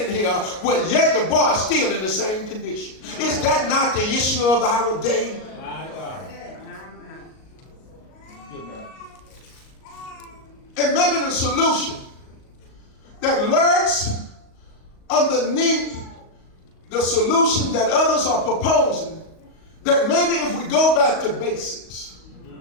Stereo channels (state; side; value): late; right; 38 ms